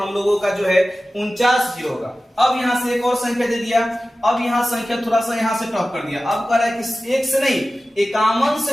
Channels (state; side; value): normal; both; correlation 0.95